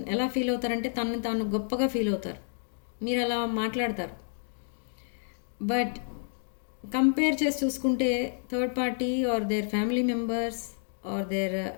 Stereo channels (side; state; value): right; silent; digital silence